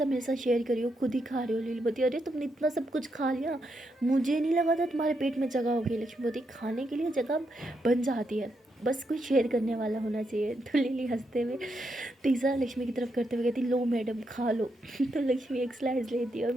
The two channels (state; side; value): normal; both; correlation 0.81